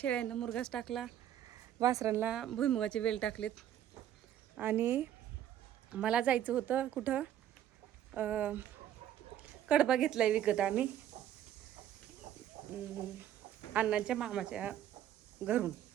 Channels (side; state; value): left; quieter; 11.0 dB